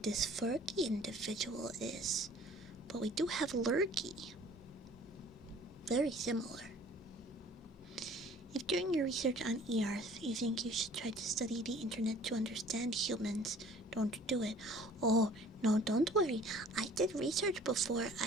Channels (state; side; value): normal; both; correlation 0.51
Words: Fergie individual is, but we do have Lurky. Very similar. If during your research on Earth you think you should try to study the internet to understand humans, don't do it. Oh, no, don't worry. I did research before